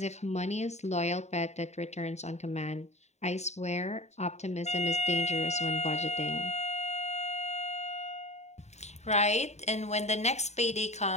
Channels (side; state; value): right; late; 0.32 ms